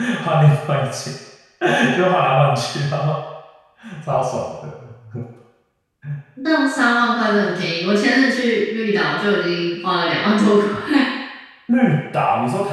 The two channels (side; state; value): both; identical; correlation 1.00